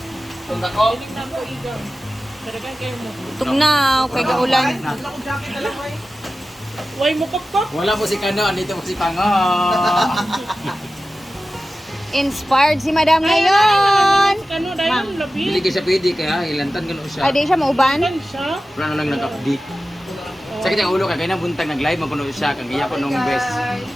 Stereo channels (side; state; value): both; normal; correlation 0.94